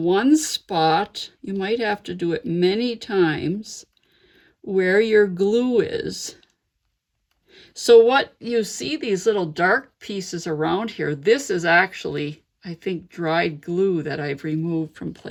spot. You might have to do it many times where your glue is. So what you see, these little dark pieces around here, this is actually, I think, dried glue that I've removed from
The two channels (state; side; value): identical; both; correlation 1.00